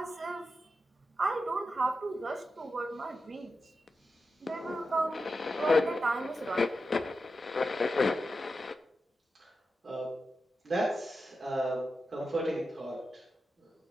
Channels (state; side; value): normal; both; correlation 0.90